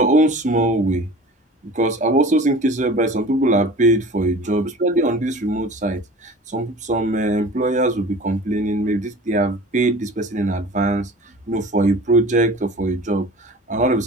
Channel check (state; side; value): normal; both; correlation 0.41